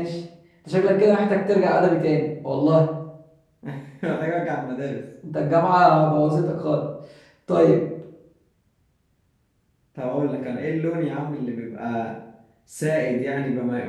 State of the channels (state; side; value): identical; both; correlation 1.00